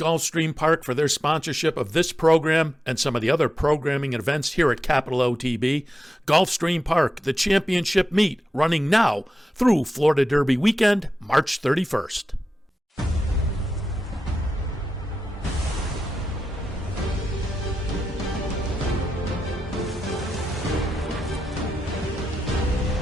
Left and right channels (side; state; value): both; normal; correlation 0.90